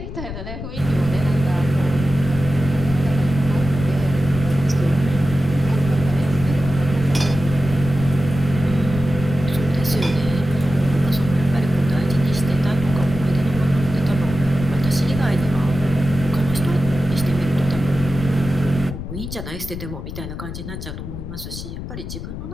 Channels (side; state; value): left; noise; rumble, 8 dB below the sound